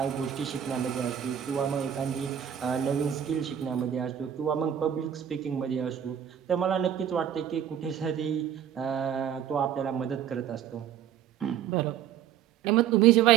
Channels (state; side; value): quieter; left; 9.5 dB